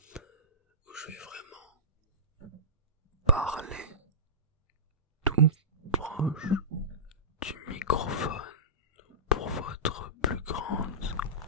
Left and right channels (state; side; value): normal; both; correlation -0.19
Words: Où je vais vraiment parler tout proche du microphone pour votre plus grande